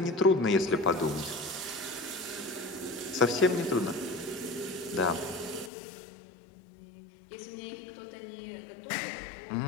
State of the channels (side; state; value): right; drops out; at 5.7 s